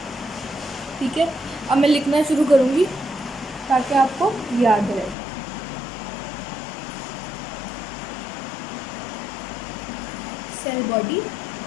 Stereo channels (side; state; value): right; drops out; at 5.2 s